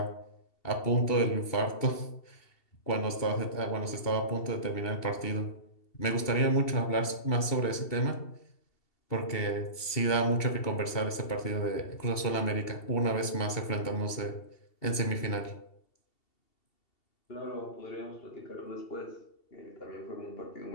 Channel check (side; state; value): right; late; 2.7 ms